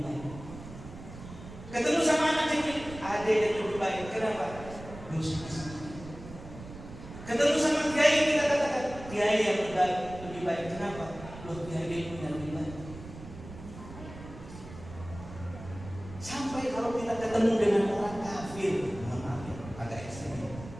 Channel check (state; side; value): noise; right; rumble, 14 dB below the sound